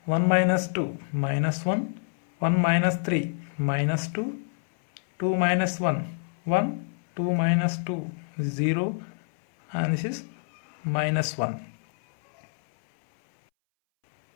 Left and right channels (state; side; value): silent; right; 60 dB below the other